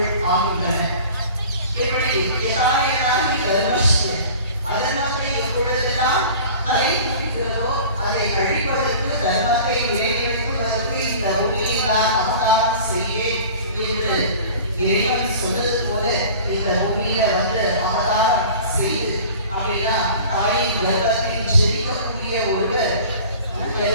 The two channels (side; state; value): both; inverted; correlation -0.42